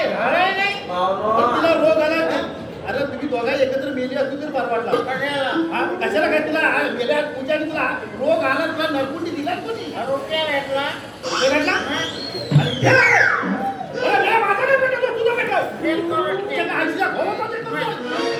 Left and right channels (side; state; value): both; identical; correlation 1.00